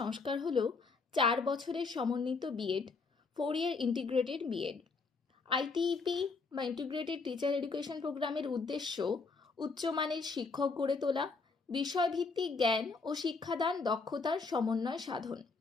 হল 4 বছরের সমন্বিত B Ed 4-year integrated B Ed. ITEP বা ইন্টিগ্রেটেড টিচার এডুকেশন প্রোগ্রামের উদ্দেশ্য উচ্চমানের শিক্ষক গড়ে তোলা, বিষয়ভিত্তিক জ্ঞান ও শিক্ষাদান দক্ষতার সমন্বয় সাধন।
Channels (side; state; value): right; quieter; 4.3 dB